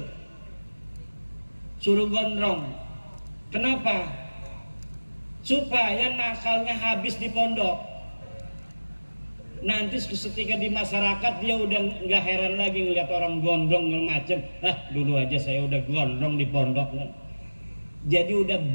suruh gondrong. Kenapa? Supaya nakalnya habis di pondok. Nanti ketika di masyarakat dia udah nggak heran lagi ngeliat orang gondrong macam. Dulu aja saya udah gondrong di pondok. Jadi udah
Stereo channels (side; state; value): both; inverted; correlation -1.00